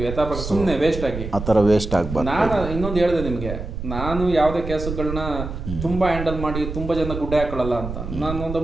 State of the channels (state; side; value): noise; right; rumble, 7 dB below the sound